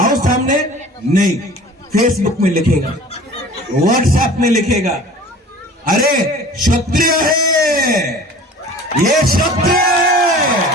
सामने। नहीं, फेसबुक में लिखेगा, व्हाट्सएप में लिखेगा, अरे क्षत्रिय है, ये क्षत्रिय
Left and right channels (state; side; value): normal; both; correlation 0.44